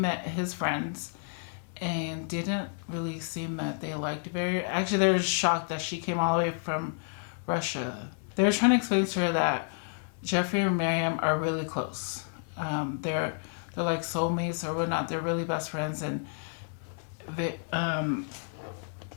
his friends. And didn't really seem that they liked Very. Actually, they were shocked that she came all the way from Russia. They were trying to explain to her that Jeffrey and Miriam are really close. They're like soulmates or whatnot. They're really best friends. And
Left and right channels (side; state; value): right; silent; digital silence